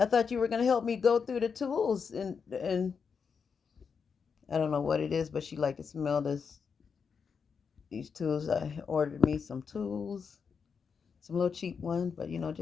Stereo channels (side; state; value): right; quieter; 6.0 dB